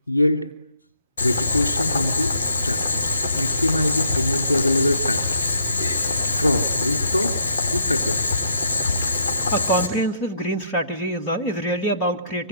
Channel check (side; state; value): both; inverted; correlation -0.70